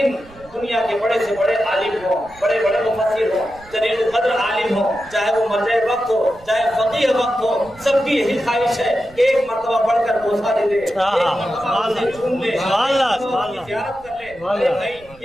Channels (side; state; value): right; noise; rumble, 24 dB below the sound